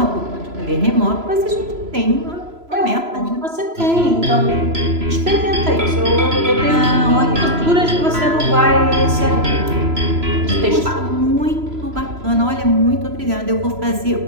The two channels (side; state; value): left; late; 3.0 ms